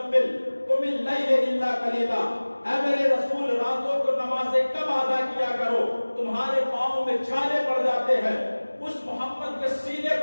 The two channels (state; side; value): inverted; both; correlation -1.00